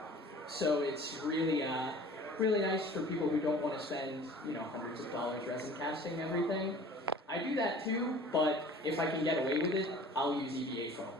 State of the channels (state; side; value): normal; both; correlation 0.46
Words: so it's really really nice for people who don't want to spend, hundreds of dollars resin casting everything. I do that too, but if I can get away with it, I'll use EVA foam.